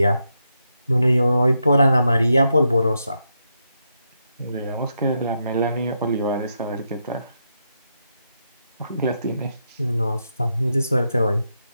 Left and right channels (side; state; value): both; inverted; correlation -0.82